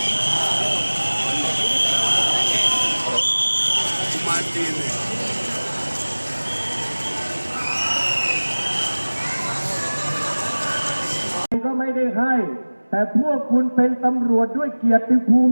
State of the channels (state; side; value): inverted; both; correlation -1.00